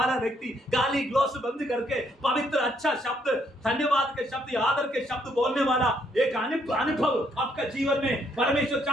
व्यक्ति गाली ग्लोस बंद करके पवित्र अच्छा शब्द, धन्यवाद के शब्द, आदर के शब्द बोलने वाला एक अनुभव आपका जीवन में परमेश्वर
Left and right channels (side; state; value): both; normal; correlation 0.71